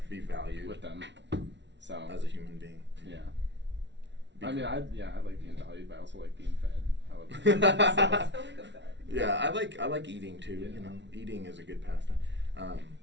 Be valued with them. So as a human being. Yeah. I like being valued, but I also like being fed. I love Yeah, I like eating too. Yeah. Eating is a good pastime.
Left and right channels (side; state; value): left; late; 0.51 ms